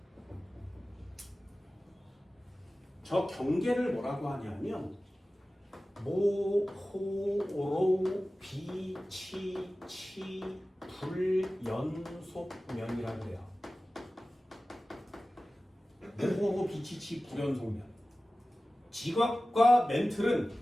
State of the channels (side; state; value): both; normal; correlation 0.96